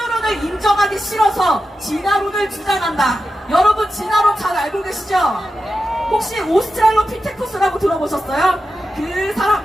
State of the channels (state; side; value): normal; both; correlation 0.91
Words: 인정하기 싫어서 진화론을 주장한다. 여러분 진화론 잘 알고 계시죠? 혹시 오스트랄로피테쿠스라고 들어보셨어요? 그